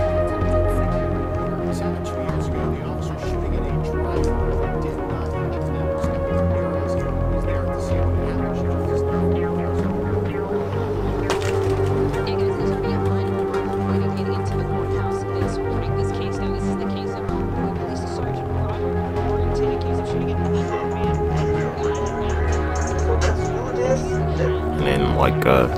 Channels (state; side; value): identical; both; correlation 1.00